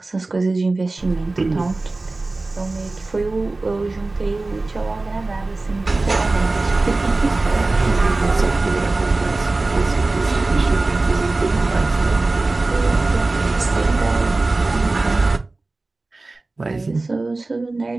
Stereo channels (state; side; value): quieter; left; 3.2 dB